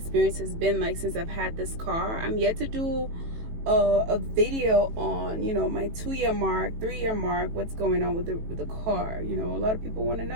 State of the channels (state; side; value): late; left; 18 ms